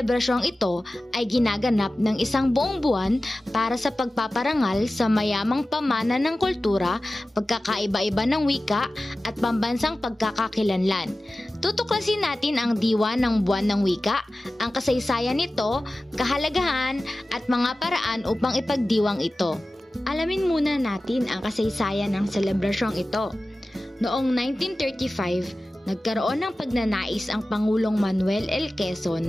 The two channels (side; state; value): both; normal; correlation 0.96